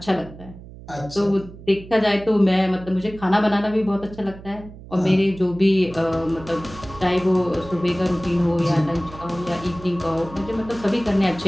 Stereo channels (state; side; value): noise; right; hum, 17 dB below the sound